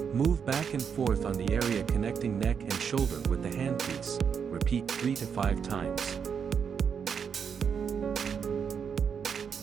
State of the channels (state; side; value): quieter; left; 6.9 dB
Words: Move back and forth on the area connecting neck and shoulder with the handpiece. Repeat 3 to 5 times.